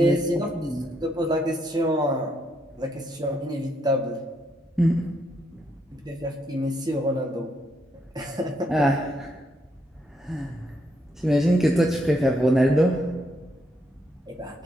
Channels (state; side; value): normal; both; correlation 0.76